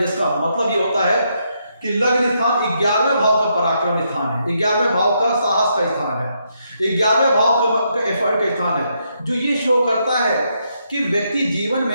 मतलब ये होता है कि लग्न स्थान 11वें भाव का पराक्रम स्थान है, 11वें भाव का साहस का स्थान है, 11वें भाव का एफर्ट का स्थान है, जो ये शो करता है कि व्यक्ति जीवन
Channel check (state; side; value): inverted; both; correlation -0.78